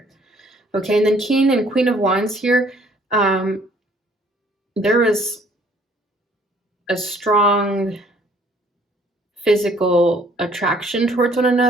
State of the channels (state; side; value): normal; both; correlation 0.60